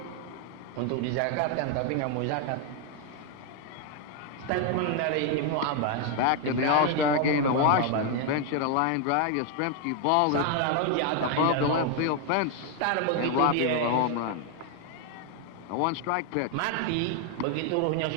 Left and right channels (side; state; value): both; different; correlation 0.01